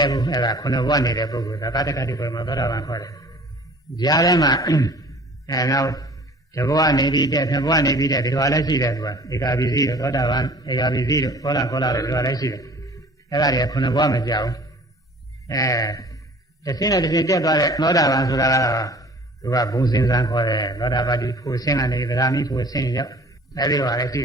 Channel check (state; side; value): normal; both; correlation 0.48